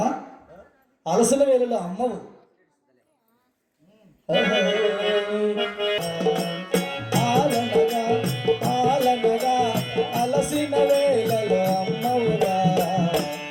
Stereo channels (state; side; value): identical; both; correlation 1.00